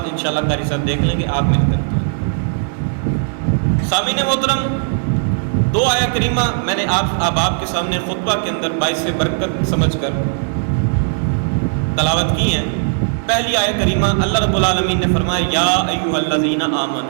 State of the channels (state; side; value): silent; left; digital silence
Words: انشاءاللہ قاری صاحب دیکھ لیں گے، آپ میری طرف توجہ کریں۔ سامعین محترم، دو آیہ کریمہ میں نے اب آپ کے سامنے خطبہ کے اندر باعث برکت سمجھ کر تلاوت کی ہیں۔ پہلی آیہ کریمہ اللہ رب العالمین نے فرمایا یا ایھا الذین